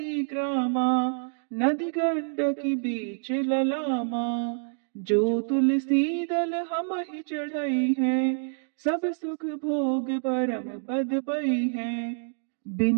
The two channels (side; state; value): left; silent; digital silence